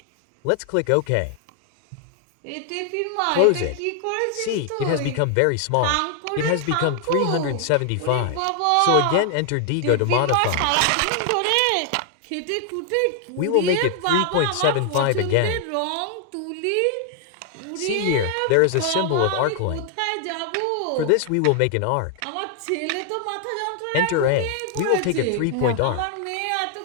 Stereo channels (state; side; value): different; both; correlation 0.00